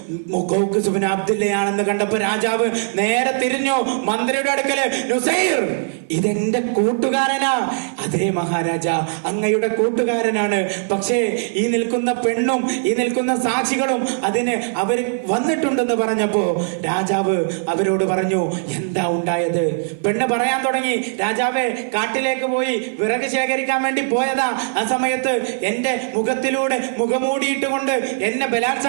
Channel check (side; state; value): left; silent; 56 dB below the other